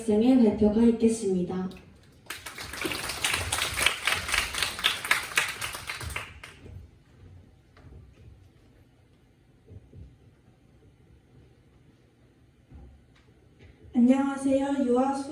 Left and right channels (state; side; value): identical; both; correlation 1.00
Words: 발표가 있겠습니다. 안녕하세요. 유아